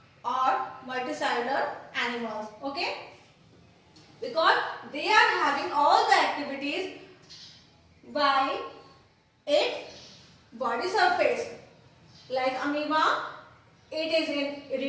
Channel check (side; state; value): both; identical; correlation 1.00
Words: or multicellular animals. Okay. Because they are having all the activities by its body surface. Like amoeba, it is in